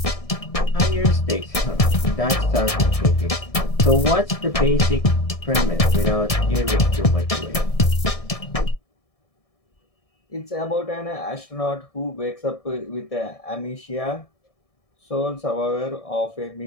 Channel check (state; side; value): late; right; 1.7 ms